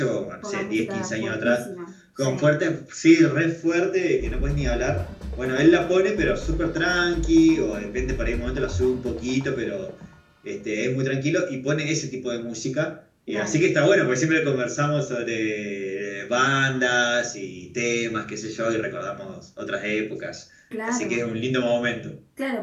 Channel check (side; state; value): both; identical; correlation 1.00